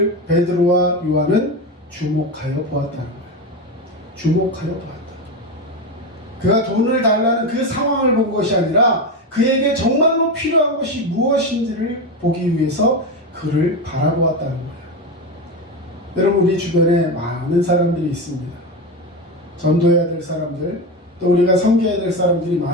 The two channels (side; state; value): both; normal; correlation 0.17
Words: 베드로와 요한은 주목하여 보았다는 거예요. 주목하여 보았다. 그가 돈을 달라는 그 상황을 본 것이 아니라 그에게 정말로 필요한 것이 무엇인지를 보기 위해서 그를 바라보았다는 거예요. 여러분, 우리 주변에 많은 사람들이 있습니다. 전도해야 될 사람들, 또 우리가 섬겨야 될 사람들이